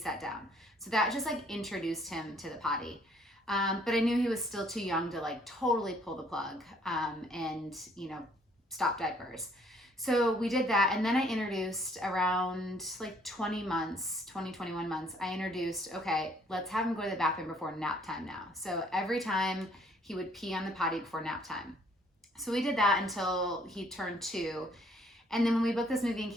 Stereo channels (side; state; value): both; normal; correlation 0.63